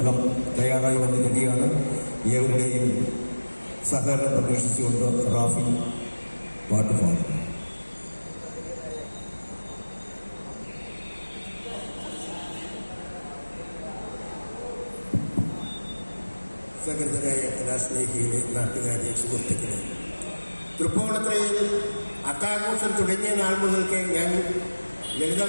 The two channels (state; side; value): inverted; both; correlation -1.00